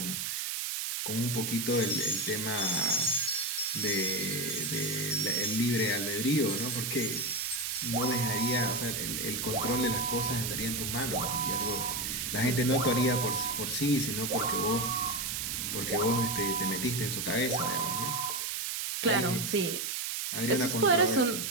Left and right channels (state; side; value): noise; right; hiss, 2 dB below the sound